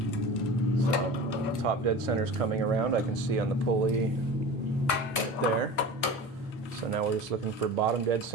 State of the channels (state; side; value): normal; both; correlation 0.34